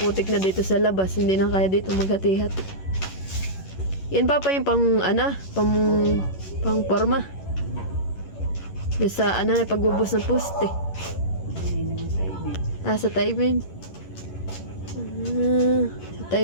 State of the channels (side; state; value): right; late; 11 ms